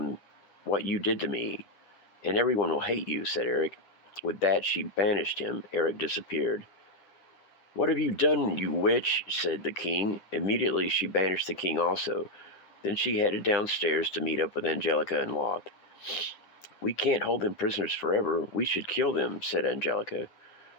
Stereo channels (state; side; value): late; right; 9.9 ms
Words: what you did to me, and everyone will hate you," said Eric. With that, she banished him. Eric disappeared. "What have you done, you witch?" said the king. Immediately, she banished the king also. Then she headed downstairs to meet up with Angelica and Loth. "We can't hold them prisoners forever. We should kill them," said Angelica.